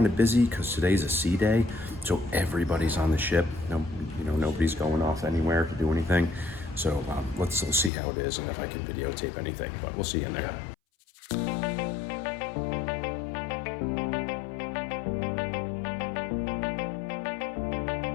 of busy because today's a sea day, so everybody's on the ship. Nobody's going off anywhere to do anything. So let's see how it is and if I can videotape anything, but we'll see you in there.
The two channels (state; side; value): drops out; right; at 7.9 s